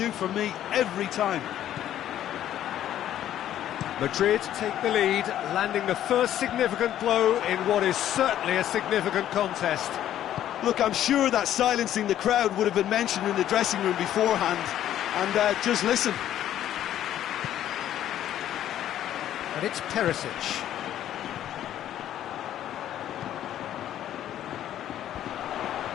for me every time. Madrid take the lead, landing the first significant blow in what is certainly a significant contest. Look, I'm sure that silencing the crowd would have been mentioned in the dressing room beforehand. And just listen. And it's Perisic.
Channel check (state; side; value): quieter; right; 11.6 dB